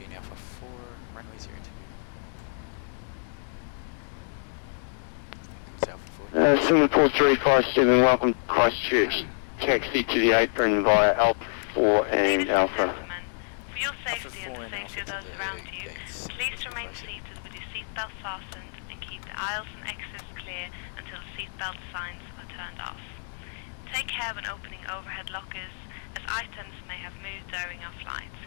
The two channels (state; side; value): silent; right; digital silence